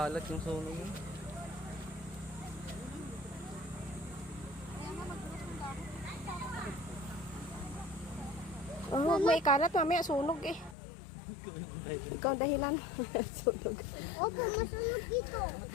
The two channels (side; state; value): right; drops out; at 10.8 s